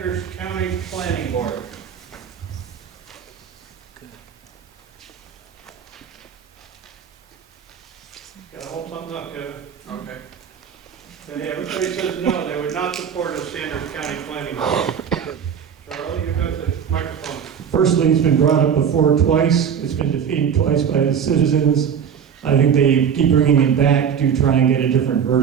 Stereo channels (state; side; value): quieter; left; 7.7 dB